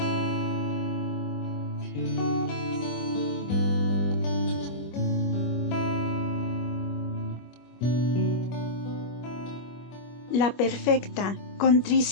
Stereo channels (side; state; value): right; late; 25 ms